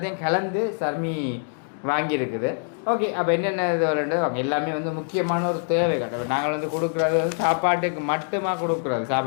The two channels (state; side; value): silent; right; 62 dB below the other